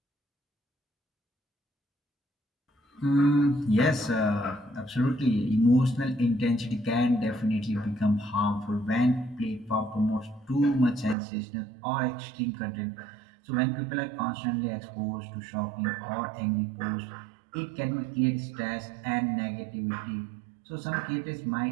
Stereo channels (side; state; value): left; drops out; at 11.2 s